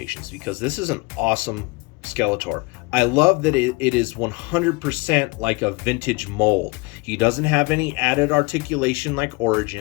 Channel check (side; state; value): right; quieter; 25.6 dB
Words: because this is an awesome Skeletor. I love that it is 100% like a vintage mold. He doesn't have any added articulation like